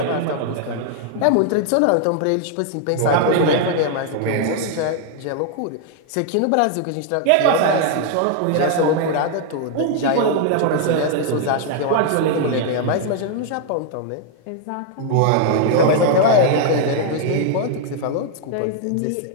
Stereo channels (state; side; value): different; both; correlation 0.00